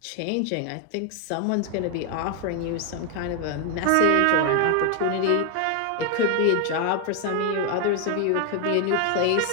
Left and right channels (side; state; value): both; different; correlation 0.00